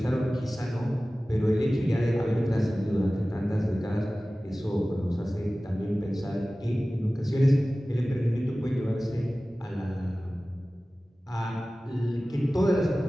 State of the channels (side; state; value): both; normal; correlation 0.97